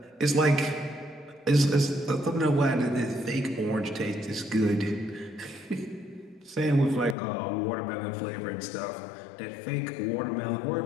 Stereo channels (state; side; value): drops out; right; at 7.2 s